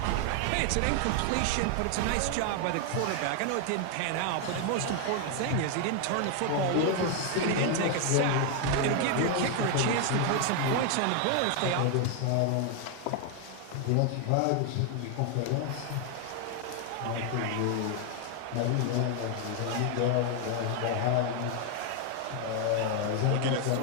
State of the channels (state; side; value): different; both; correlation 0.00